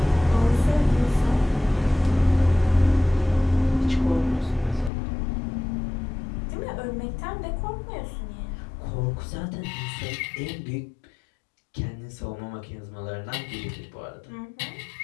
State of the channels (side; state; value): right; drops out; at 4.9 s